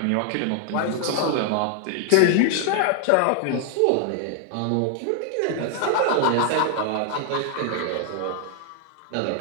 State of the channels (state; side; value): different; both; correlation 0.00